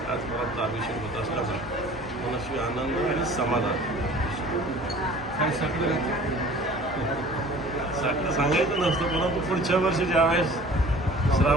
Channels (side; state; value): both; normal; correlation 0.47